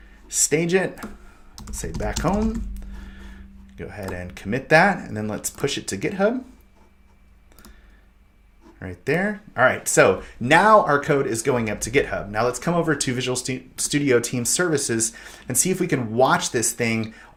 stage it, say back home. Go ahead and commit that, and then let's push it to GitHub. Right there. All right, so now our code is going up to GitHub. Now let's come over to Visual Studio Team Services and see if we can watch this thing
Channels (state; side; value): identical; both; correlation 1.00